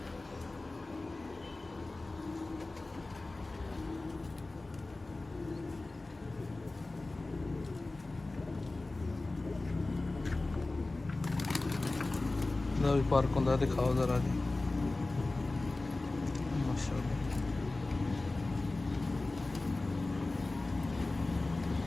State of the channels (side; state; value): right; quieter; 3.1 dB